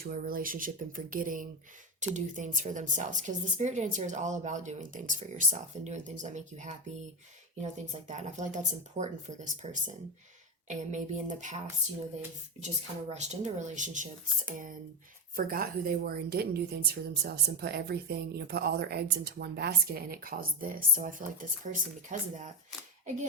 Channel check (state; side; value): normal; both; correlation 0.12